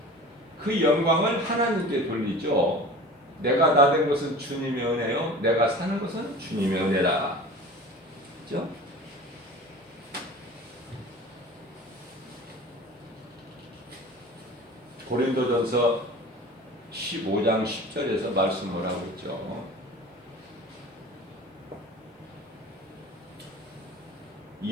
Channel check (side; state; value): both; normal; correlation 0.38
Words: 그 영광을 하나님께 돌리죠. 내가 나 된 것은 주님의 은혜요. 내가 사는 것은 주님의 은혜다. 그렇죠? 고린도전서 15장 10절에서 말씀을 하고 있죠.